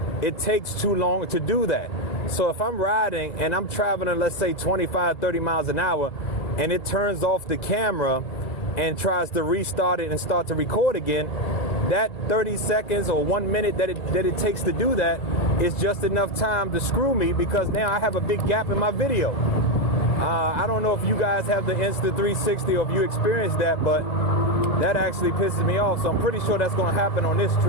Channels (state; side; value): late; right; 2.0 ms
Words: it takes too long to do that. So if I'm riding and I'm traveling, let's say 25, 30 miles an hour, and it turns off the camera and tries to restart it and start to record again, that 30 seconds or 1 minute that it takes to do that is just enough time to screw me because now I have a big gap in my video. I don't know if you guys have the Insta 360 or if you experienced that, but that actually pisses me off. So I'm pretty sure that's going to happen on this